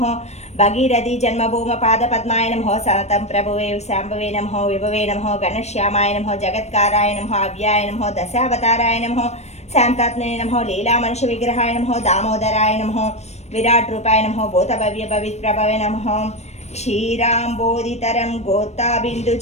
భగీరథి జన్మభూమ పాదపద్మాయ నమః, సతతం ప్రభువే శాంభవే నమః, విభవే నమః, గణశ్యామాయ నమః, జగత్కారాయ నమః, అవ్యాయ నమః, దశావతారాయ నమః, శాంతాత్మనే నమః, లీలా మనుష్య విగ్రహాయ నమః, దామోదరాయ నమః, విరాట్ రూపాయ నమః, భూతభవ్య పవిత్రభవే నమః, క్షీరాంబోధితరం గోత్తాబిందు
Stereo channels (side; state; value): right; late; 0.32 ms